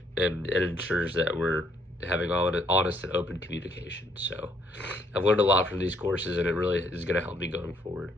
and it ensures that we're having honest and open communication. So I've learned a lot from these courses, and it really is going to help me going forward.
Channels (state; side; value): normal; both; correlation 0.68